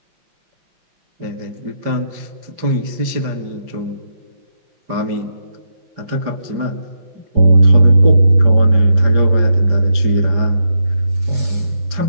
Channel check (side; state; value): left; late; 5.0 ms